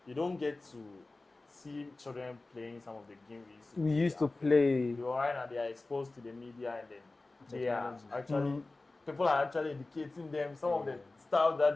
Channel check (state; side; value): quieter; right; 3.2 dB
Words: you don't get to see children playing some of the games we used to play. Right now they are exposed to the media and then they are actually people are actually educating them. Some of the stuff that